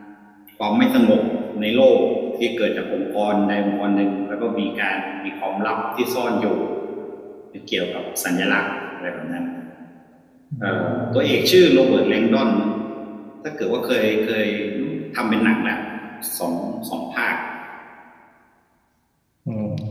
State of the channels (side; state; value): both; identical; correlation 1.00